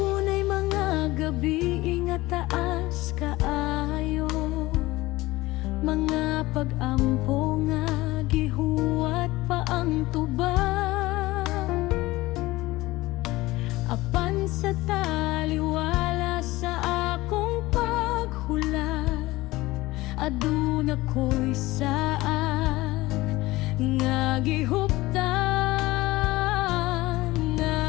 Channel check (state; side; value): quieter; right; 19.2 dB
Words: mga gabi nga taas kaayo, mga pag-ampo nga gihuwat pa ang tubang. Apan sa taliwala sa akong paghulat, aduna ko'y saad nga gihuptan, nga